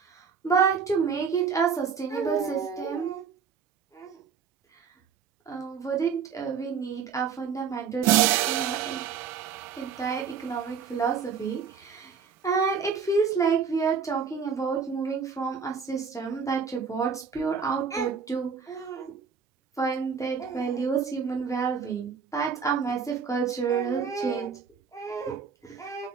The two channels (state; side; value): quieter; left; 6.3 dB